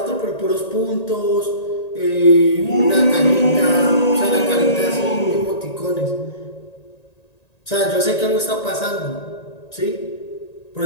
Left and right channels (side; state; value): right; late; 1.9 ms